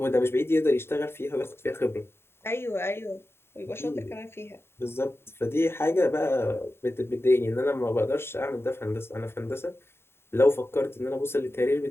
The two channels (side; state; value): right; late; 0.11 ms